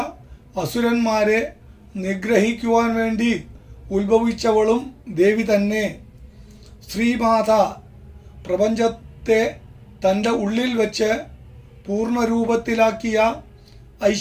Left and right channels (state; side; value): identical; both; correlation 1.00